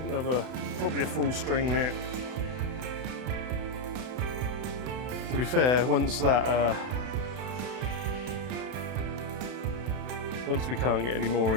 probably a full string net. To be fair, once we can't get any more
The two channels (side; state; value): left; late; 32 ms